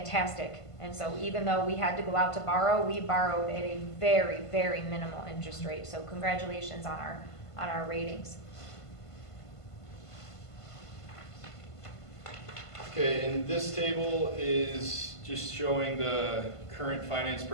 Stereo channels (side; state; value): right; late; 1.5 ms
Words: And so even though we had to go out to borrow, we borrowed at a very, very minimal interest rate. So congratulations on our ratings. Okay, and this table is just showing the current finance